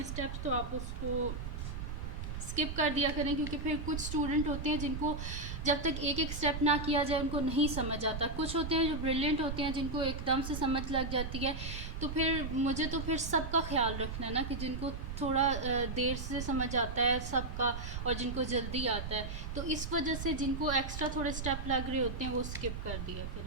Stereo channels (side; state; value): right; noise; rumble, 6 dB below the sound